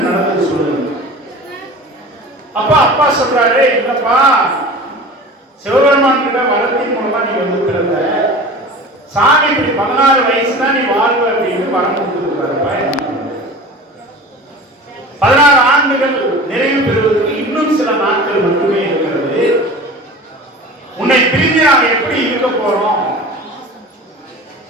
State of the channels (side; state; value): both; normal; correlation 0.37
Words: நடந்தது சொல்லுங்க. அப்பா அப்பா சொல்றாரு, இல்லப்பா சிவபெருமான் கிட்ட வரத்தின் மூலமா நீ வந்து பிறந்த, சாமி இப்படி 16 வயசு தான் நீ வாழ்வ அப்படின்னு வரம் கொடுத்துருக்காருப்பா. 16 ஆண்டுகள் நிறைவு பெறுவதற்கு இன்னும் சில நாட்கள் மட்டுமே இருக்கிறது. உன்னை பிரிந்து நாங்கள் எப்படி இருக்க போறோம்?